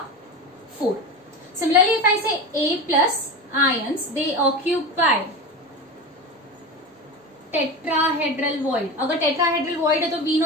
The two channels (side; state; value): both; normal; correlation 0.25